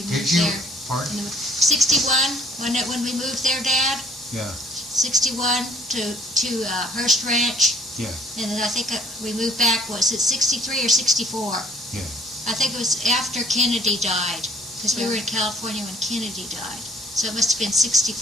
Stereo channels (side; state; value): both; normal; correlation 0.59